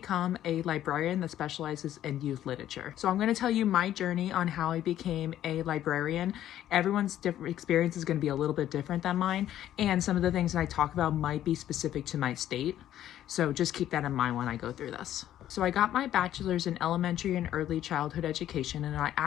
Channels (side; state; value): right; quieter; 12.0 dB